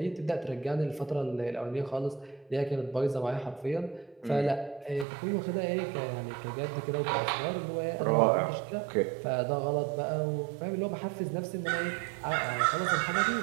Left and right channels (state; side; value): drops out; left; at 5.1 s